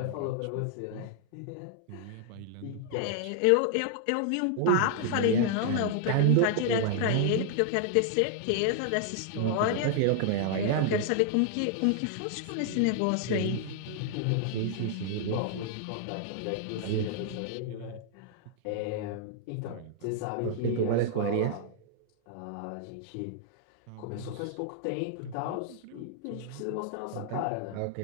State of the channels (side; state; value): both; different; correlation 0.00